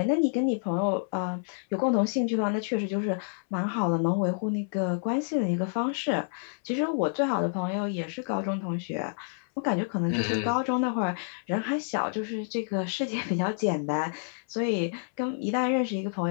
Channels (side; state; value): right; silent; 58 dB below the other